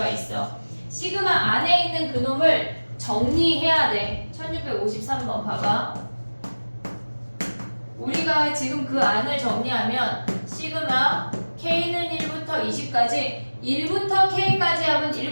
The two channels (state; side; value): inverted; both; correlation -1.00